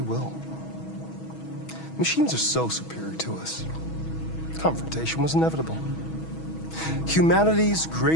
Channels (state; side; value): late; right; 6.2 ms